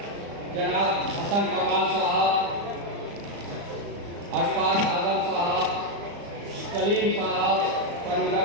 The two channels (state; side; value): late; left; 35 ms